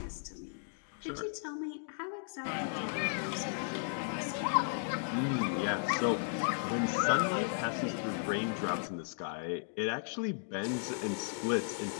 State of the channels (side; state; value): right; silent; digital silence